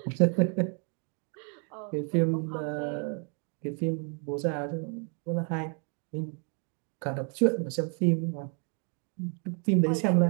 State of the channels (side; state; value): left; quieter; 39.3 dB